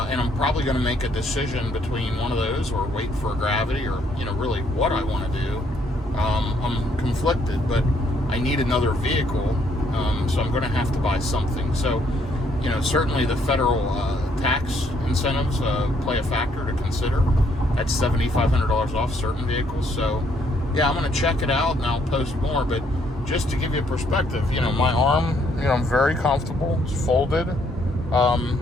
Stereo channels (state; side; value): normal; both; correlation 0.69